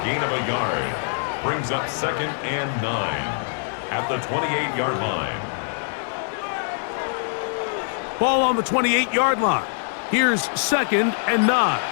gain of a yard brings up 2nd and 9 at the 28-yard line. Ball on the 28-yard line. Here's 2nd and 9.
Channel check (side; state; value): right; silent; digital silence